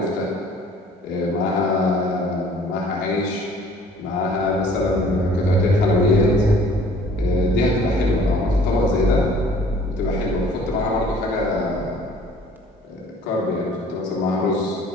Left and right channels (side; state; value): both; normal; correlation 0.53